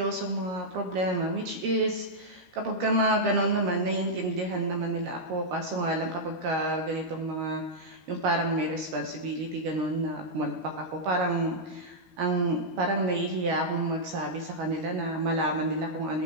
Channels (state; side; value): late; left; 13 ms